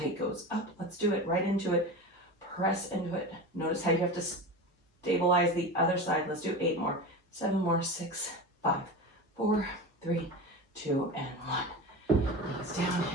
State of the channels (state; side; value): normal; both; correlation 0.28